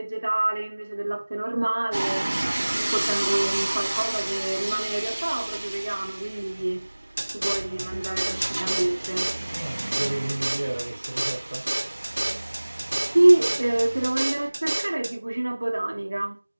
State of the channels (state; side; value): inverted; both; correlation -1.00